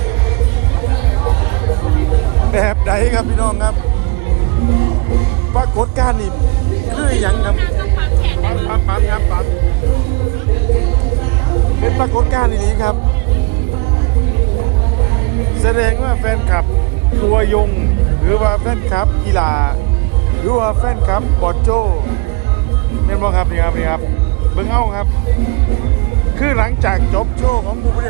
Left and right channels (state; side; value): quieter; left; 25.3 dB